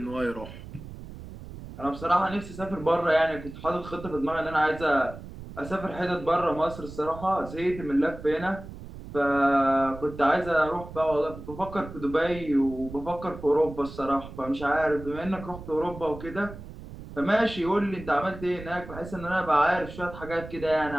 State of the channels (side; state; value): right; noise; rumble, 13 dB below the sound